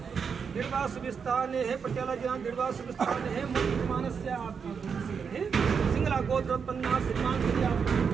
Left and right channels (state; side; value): quieter; left; 6.2 dB